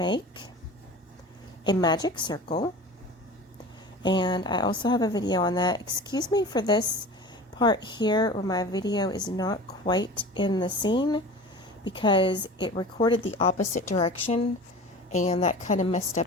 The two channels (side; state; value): both; normal; correlation 0.37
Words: a magic circle, and I also have a video on that. Excuse me for this part here where my video is not quite in the scene, because it recorded the opposite direction and that kind of messed up